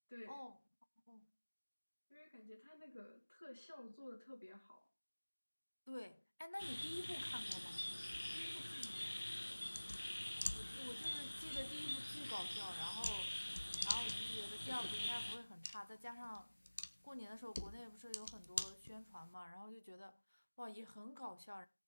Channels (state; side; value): inverted; both; correlation -1.00